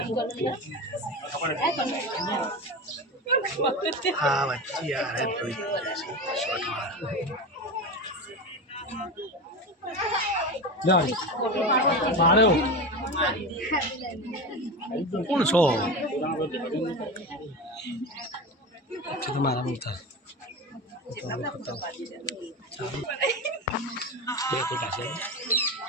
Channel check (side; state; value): both; normal; correlation 0.24